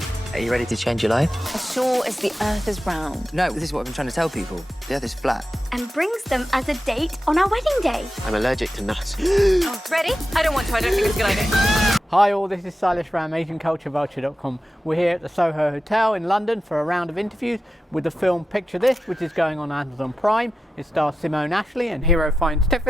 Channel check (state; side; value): normal; both; correlation 0.92